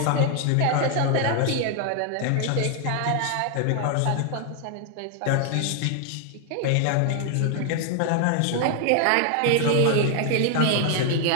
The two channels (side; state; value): both; different; correlation 0.00